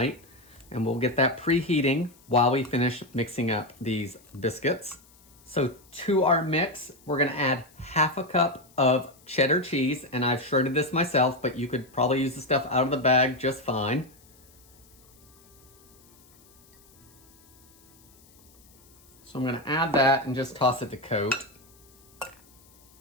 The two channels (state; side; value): noise; left; hiss, 28 dB below the sound